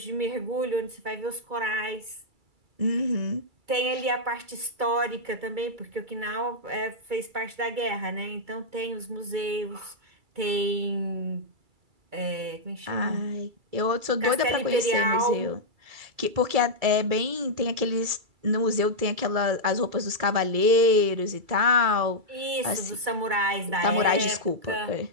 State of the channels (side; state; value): left; late; 2.3 ms